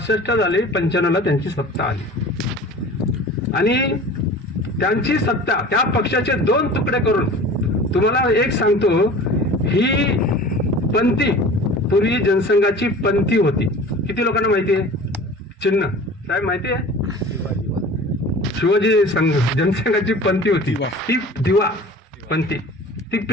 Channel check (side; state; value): both; normal; correlation 0.41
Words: झाली, 95ला त्यांची सत्ता आली. आणि त्यांची सत्ता त्या पक्षाचे 2 तुकडे करून, तुम्हाला एक सांगतो, ही पंथी पूर्वी जनसंघाची पंथी होती. किती लोकांना माहिती आहे? चिन्ह साहेब माहिती आहे? शिवाजी संघ जनसंघाची पंथी होती. ती दिवा पंथी, ती